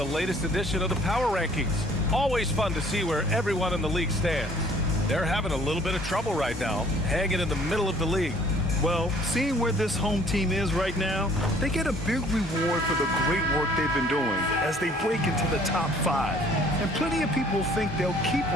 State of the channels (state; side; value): normal; both; correlation 0.56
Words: latest edition of the Power Rankings. Always fun to see where everyone in the league stands. They're having a little bit of trouble right now, hanging in the middle of the league. Well, seeing where this home team is right now, they get a big reward for the great work they've been doing as they break into the top 5. And plenty of people think they'll keep